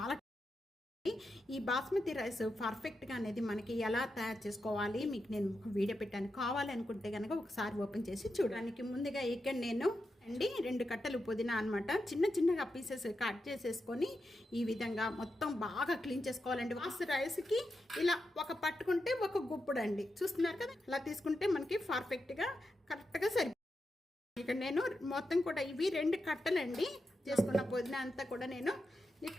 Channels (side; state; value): both; normal; correlation 0.88